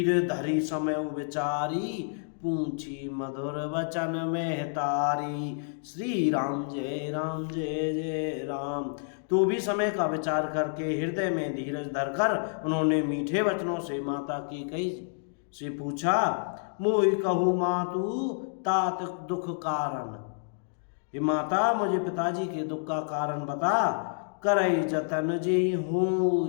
धरी समय विचारी, पूछी मधुर वचन में तारी। श्री राम जय राम। तो भी समय का विचार करके हृदय में धीरज धरकर उन्होंने मीठे वचनों से माता कैकेयी से पूछा, मोहि कहू मातु तात दुख कारण। हे माता, मुझे पिताजी के दुख का कारण बता। करई जतन जे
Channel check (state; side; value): silent; right; digital silence